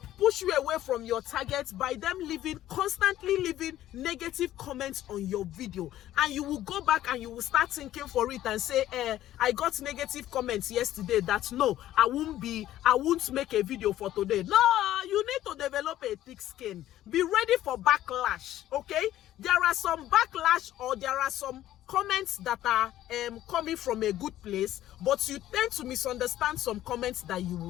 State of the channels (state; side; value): quieter; right; 13.4 dB